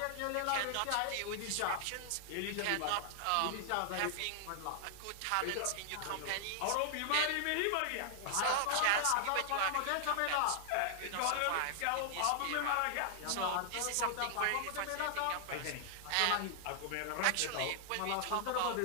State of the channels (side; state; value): both; different; correlation 0.00